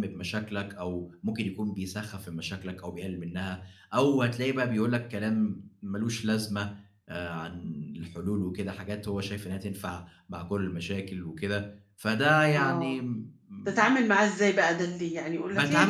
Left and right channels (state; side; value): identical; both; correlation 1.00